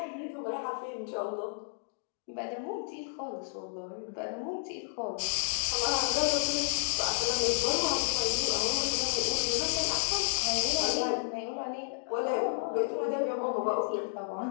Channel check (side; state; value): right; silent; digital silence